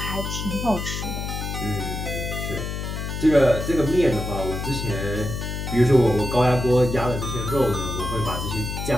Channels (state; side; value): noise; left; hum, 5 dB below the sound